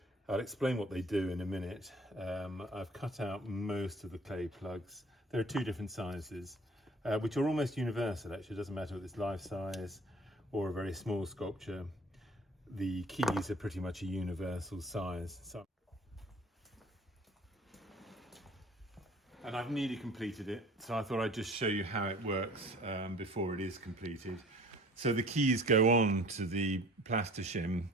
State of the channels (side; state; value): both; normal; correlation 0.49